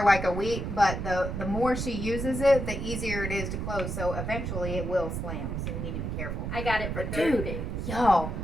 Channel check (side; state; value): right; noise; rumble, 4 dB below the sound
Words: like a week, but the more she uses it, the easier it is to close. So eventually it will slam. So we need to be careful. I got it for Dude. 30 days. Y'all,